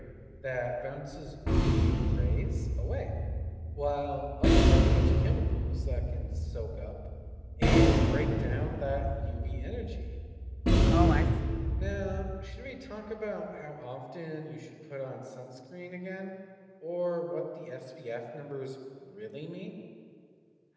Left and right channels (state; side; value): identical; both; correlation 1.00